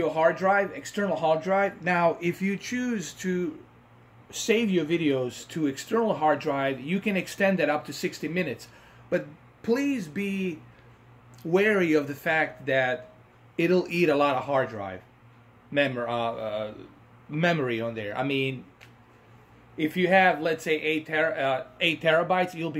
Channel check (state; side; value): identical; both; correlation 1.00